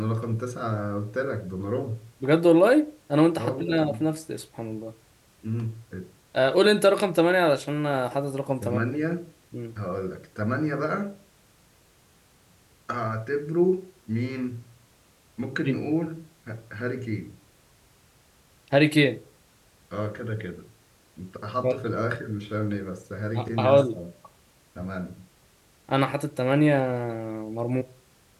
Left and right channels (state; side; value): identical; both; correlation 1.00